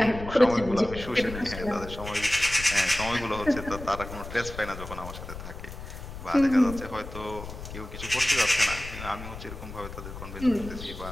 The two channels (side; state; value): left; noise; rumble, 11 dB below the sound